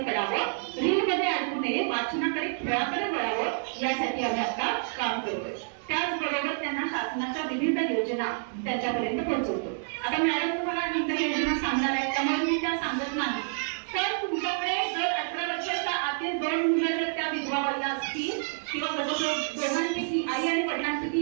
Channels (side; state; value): left; silent; digital silence